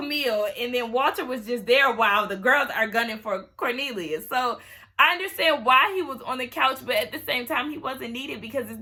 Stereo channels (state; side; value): identical; both; correlation 1.00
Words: And then Walter was just there while the girls are gunning for Cornelius. So I understand why he was on the couch, but at the same time, he wasn't needed because it's